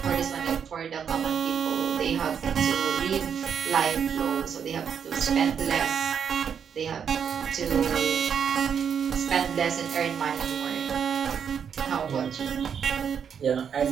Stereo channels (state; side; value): quieter; left; 7.5 dB